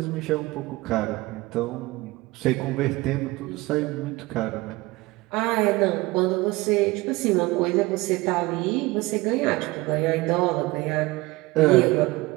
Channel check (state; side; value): quieter; left; 21.1 dB